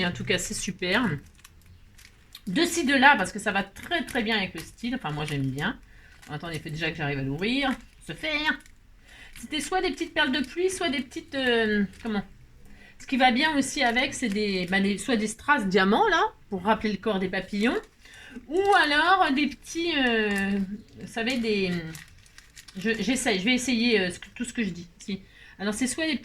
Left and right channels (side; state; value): both; identical; correlation 1.00